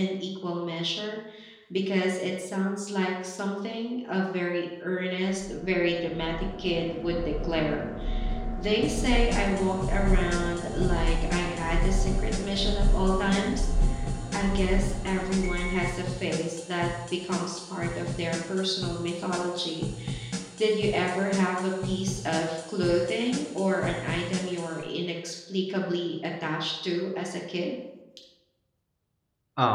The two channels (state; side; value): identical; both; correlation 1.00